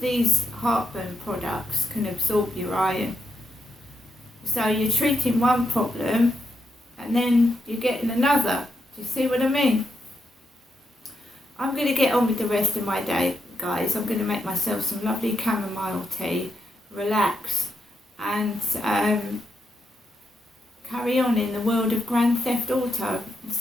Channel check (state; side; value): normal; both; correlation 0.81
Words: heartburn products can absorb your iron. So you're treating one problem and then you're getting another. Do you see what I mean? I'm going to get on with the rest of my day, guys. I'm going to make myself some lovely chamomile tea, relax, and carry on in the world of Grand Theft Auto.